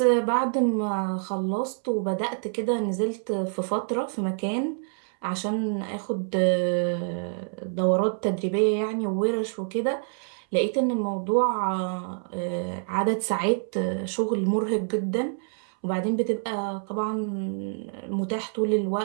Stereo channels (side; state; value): left; silent; 60 dB below the other